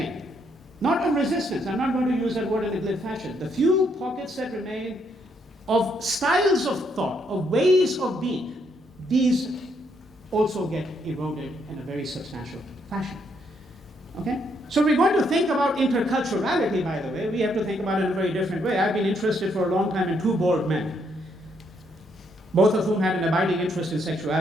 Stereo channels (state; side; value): normal; both; correlation 0.74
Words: not of resistance, I'm not going to use that word in a glib fashion, the few pockets that remain of styles of thought, of ways of being, these also get eroded in a very substantial fashion. Okay? So we're going to think about interculturality, by the way. We have to think about it in a very different way. I've been interested for a long time in two bald men, both of whom had an abiding interest in